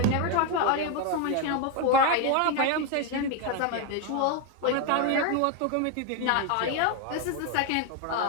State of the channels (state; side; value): different; both; correlation 0.02